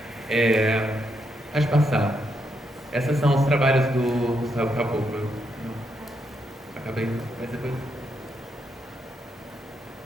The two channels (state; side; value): normal; both; correlation 0.79